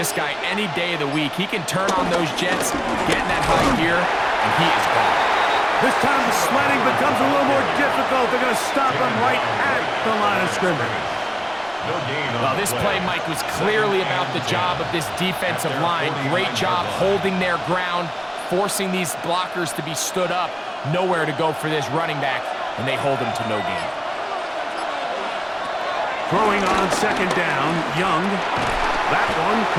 guy any day of the week. He can turn on those jets, get in that high gear, and he is gone. This time the sledding becomes a little more difficult. They're going to stop him right at the line of scrimmage. Well, this play, Mike, was clearly about the job of this defensive line. Great job holding their ground, forcing these blockers to be stood up. Nowhere to go for this running back, and they hold him to no gain. Throwing on second down, Young. That one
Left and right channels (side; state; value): both; identical; correlation 1.00